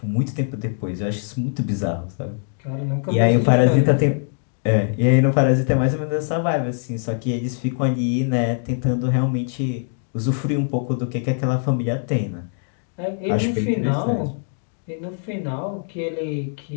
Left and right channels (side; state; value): right; silent; digital silence